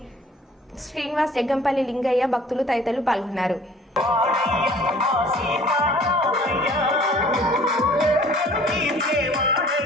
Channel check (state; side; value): normal; both; correlation 0.52